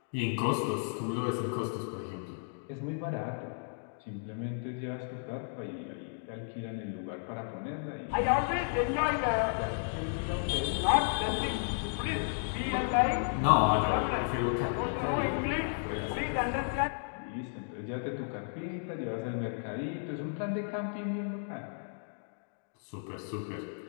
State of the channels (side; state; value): right; silent; digital silence